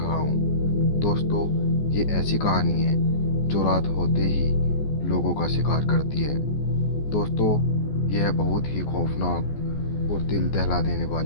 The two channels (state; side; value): late; right; 14 ms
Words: हूँ। दोस्तों, ये ऐसी कहानी है जो रात होते ही लोगों का शिकार करती है। दोस्तों, यह बहुत ही खौफनाक और दिल दहला देने